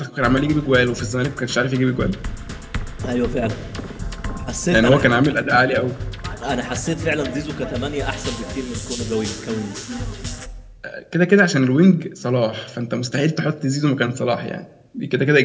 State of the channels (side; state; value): both; identical; correlation 1.00